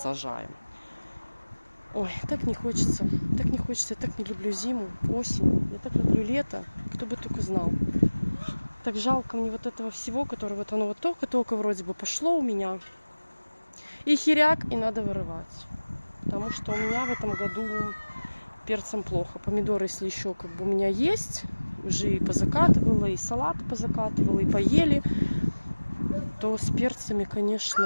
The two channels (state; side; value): inverted; both; correlation -1.00